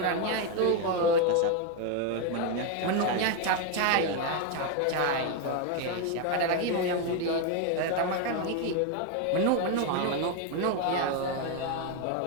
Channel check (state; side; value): different; both; correlation 0.01